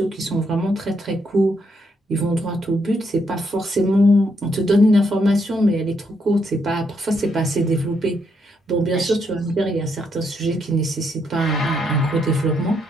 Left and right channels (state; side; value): normal; both; correlation 0.76